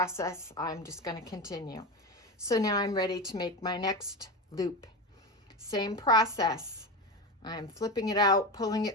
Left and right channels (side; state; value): both; normal; correlation 0.20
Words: I'm just going to continue. So now I'm ready to make my next loop. Same process. I'm flipping it out, pulling